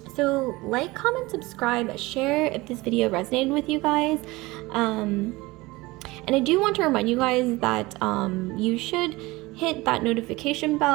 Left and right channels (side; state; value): left; quieter; 21.3 dB